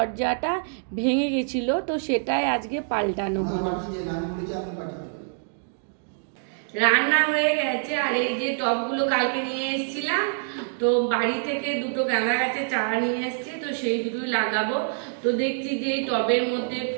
ভেঙে গেছিল, তো সেটাই আজকে পাল্টানো হলো। রান্না হয়ে গেছে। আর এই যে টবগুলো কালকে নিয়ে এসেছিলাম, তো বাড়ি থেকে দুটো গাঁদা গাছের চারা নিয়ে এসেছি, তো সেই দুটোই লাগাবো। তো দেখছি যে এই টবের মধ্যে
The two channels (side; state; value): left; silent; digital silence